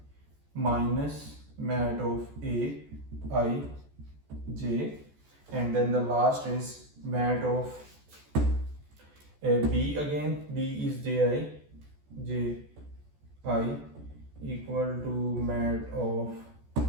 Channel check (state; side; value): late; left; 14 ms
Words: minus mat of A I j, and then the last is mat of B again. B is j I equal to mat of